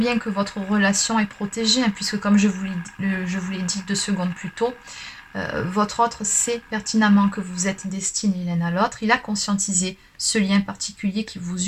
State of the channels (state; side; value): identical; both; correlation 1.00